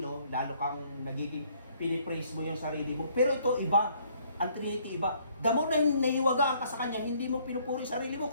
lalo kang nagiging pinipraise mo yung sarili mo. Pero ito iba. Ang Trinity iba. Damo na naiwagaan ka sa Kanya, hindi mo pinupuri sarili mo,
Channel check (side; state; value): both; inverted; correlation -0.64